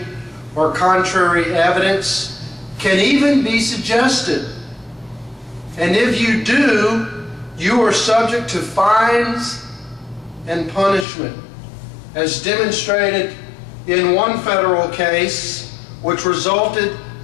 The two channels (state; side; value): drops out; right; at 11.1 s